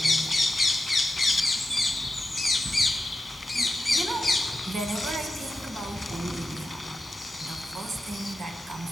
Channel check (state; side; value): normal; both; correlation 0.89